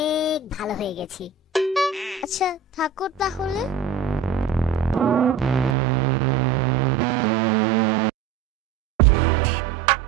ভালো হয়ে গেছি। আচ্ছা থাকো তাহলে।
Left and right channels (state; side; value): drops out; left; at 5.8 s